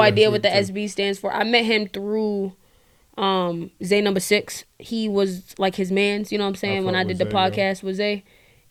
what the SB stands for. I met him through Zay number 6. He was like his man's, you know what I'm saying? When I did the podcast with Zay,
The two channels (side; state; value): both; identical; correlation 1.00